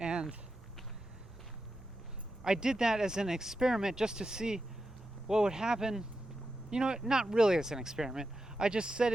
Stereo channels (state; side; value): normal; both; correlation 0.89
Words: I did that as an experiment just to see what would happen. Not really as an experiment. I just said